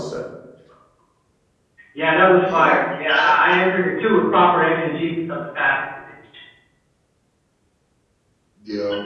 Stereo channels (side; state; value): both; identical; correlation 1.00